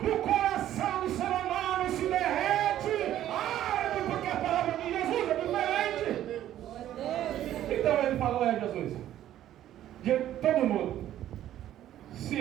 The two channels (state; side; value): quieter; left; 12.3 dB